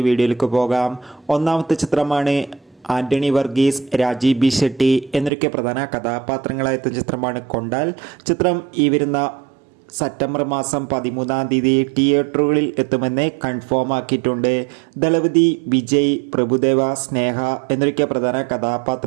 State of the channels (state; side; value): drops out; left; at 5.3 s